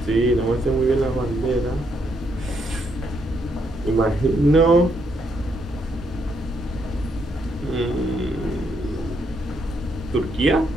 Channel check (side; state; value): both; normal; correlation 0.75